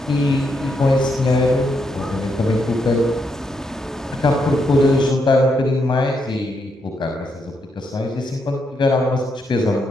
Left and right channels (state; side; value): normal; both; correlation 0.79